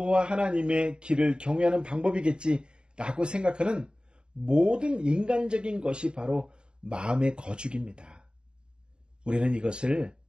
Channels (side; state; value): left; late; 0.051 ms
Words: 하나님의 길을 경외하는 방법이겠지 라고 생각하는 모든 인간적인 것이 바로 마음의 거죽입니다. 우리는 이것을